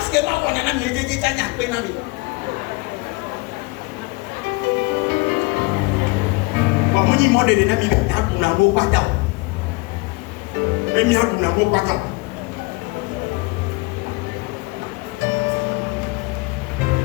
que là on a mi je tanya pe na mi ba mo ni modele na mi na wo pata e mi adu na wo pata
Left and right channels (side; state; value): right; quieter; 25.5 dB